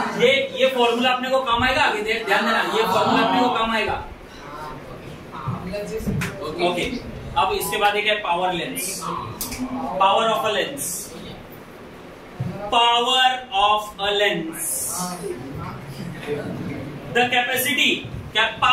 ये फॉर्मूला अपने को काम आएगा आगे, ध्यान देना, ये फॉर्मूला अपने को काम आएगा। ओके, अब इसके बाद एक है power lens. Power of a lens, the capacity. क्या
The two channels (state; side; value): identical; both; correlation 1.00